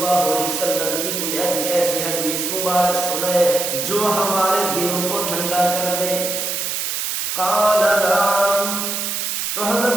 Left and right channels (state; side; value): noise; right; hiss, 2 dB below the sound